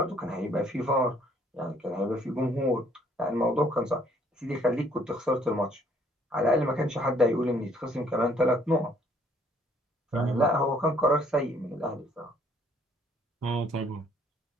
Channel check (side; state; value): both; normal; correlation 0.63